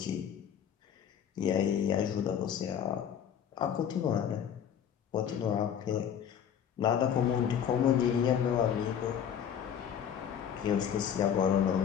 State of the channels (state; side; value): quieter; right; 8.7 dB